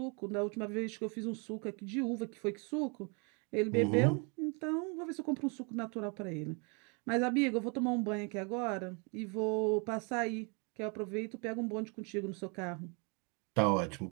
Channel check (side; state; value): left; quieter; 34.3 dB